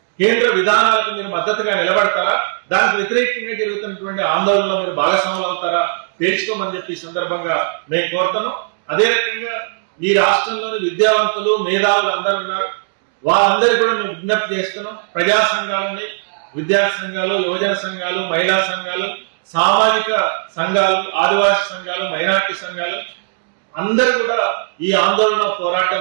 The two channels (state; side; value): silent; left; digital silence